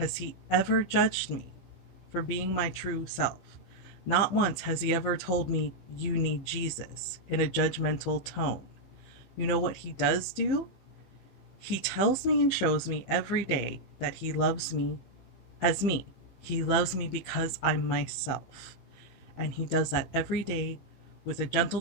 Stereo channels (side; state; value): right; late; 15 ms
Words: he ever judged me for being my true self. Not once has he ever told me, "You need Jesus," in a judgmental tone. You know what he does do? He tells me and shows me every day that he loves me as me. He loves me because I'm myself. And he does that every day with a